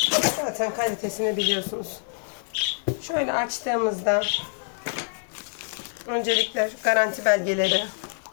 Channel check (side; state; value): right; silent; 61 dB below the other